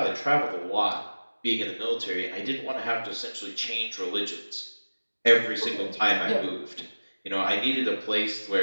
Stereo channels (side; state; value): both; inverted; correlation -1.00